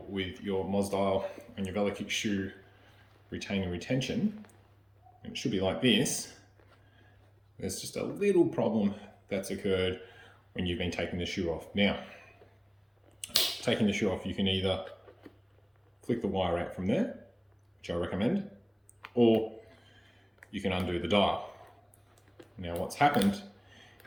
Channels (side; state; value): both; identical; correlation 1.00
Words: with your MOZ dial and your VeloKicks shoe retaining retention, and it should be like this, there's just a little problem that's occurred when you've been taking the shoe off. Now, taking the shoe off, you can either flick the wire out from there, which I recommend, or you can undo the dial. Now what's happened